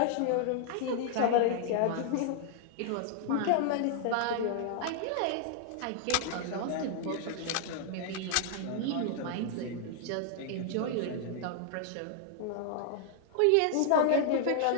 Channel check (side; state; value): both; different; correlation -0.01